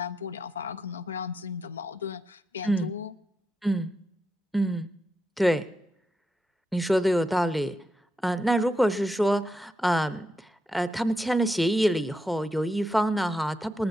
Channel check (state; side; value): normal; both; correlation 0.85